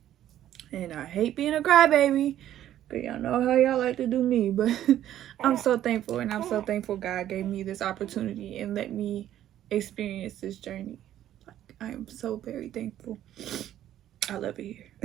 And I hate being a crybaby, but y'all know how y'all like to do me. But I'm so thankful, and I'm so thankful God gave me this opportunity and let me experience this journey. Like, I am so very thankful. I love it here.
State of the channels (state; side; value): quieter; left; 12.0 dB